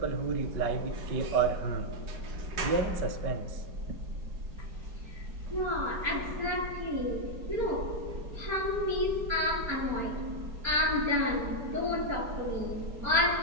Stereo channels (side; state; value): left; late; 4.3 ms